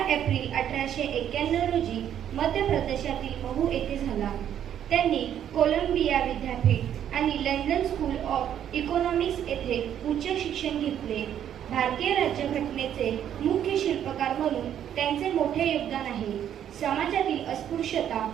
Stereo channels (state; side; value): quieter; left; 10.0 dB